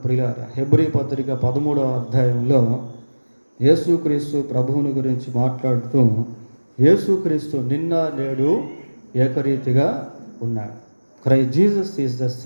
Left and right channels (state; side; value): inverted; both; correlation -1.00